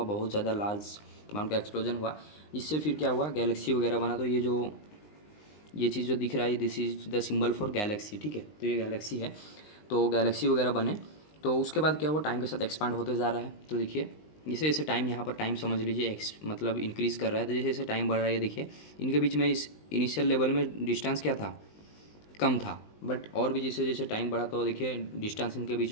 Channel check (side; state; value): right; late; 19 ms